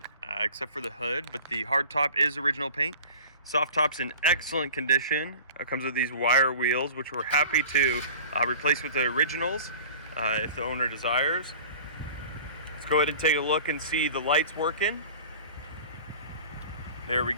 except for the hood, but the hard top is original paint. Soft top's in excellent condition. It comes with these wire wheels, which we're happy to replace with the originals if the owner desires. Let's go ahead and take a look and see the lights working. There we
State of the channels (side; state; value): both; inverted; correlation -0.41